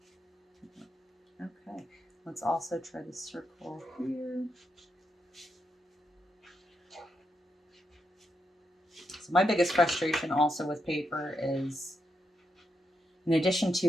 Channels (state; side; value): normal; both; correlation 0.83